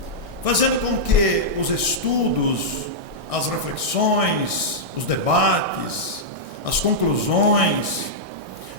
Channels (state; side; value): late; left; 1.6 ms